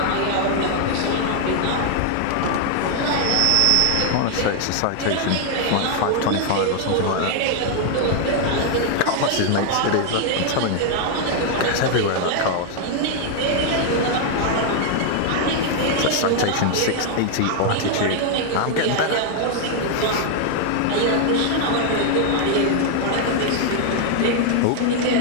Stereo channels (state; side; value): different; both; correlation 0.00